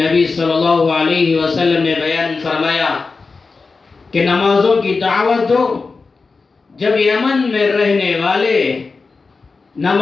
صلی اللہ علیہ وسلم نے بیان فرمایا کہ نمازوں کی دعوت دو۔ جب یمن میں رہنے والے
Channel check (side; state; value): right; quieter; 4.3 dB